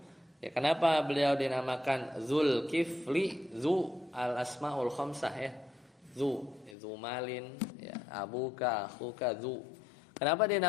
Ya, kenapa beliau dinamakan Dzulkifli? Zu al-asmaul khamsah ya. Zu malin ya, abuka, akhuka, zu. Kenapa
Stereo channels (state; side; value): drops out; right; at 6.8 s